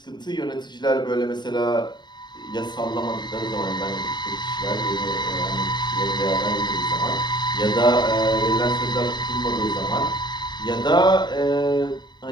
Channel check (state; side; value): late; right; 0.21 ms